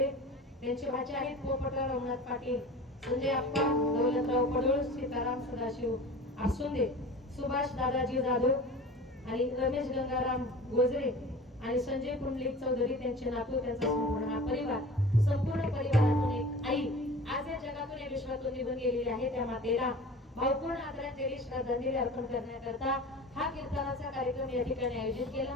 त्यांचे भाचे आहेत पोपटराव रघुनाथ पाटील, संजय आप्पा दौलतराव पडोळ, सीताराम सदाशिव आसुंदे, सुभाष दादाजी जाधव आणि रमेश गंगाराम गोजरे आणि संजय पुंडलिक चौधरी त्यांचे नातू त्यांचा संपूर्ण हा परिवार संपूर्ण परिवारातून एक आई आज या जगातून या विश्वातून निघून गेलेली आहे. त्या मातेला भावपूर्ण आदरांजली श्रद्धांजली अर्पण करण्याकरता हा कीर्तनाचा कार्यक्रम या ठिकाणी आयोजित केला.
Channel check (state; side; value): normal; both; correlation 0.38